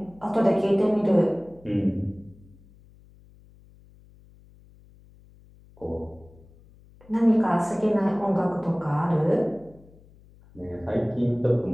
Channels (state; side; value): noise; left; hum, 26 dB below the sound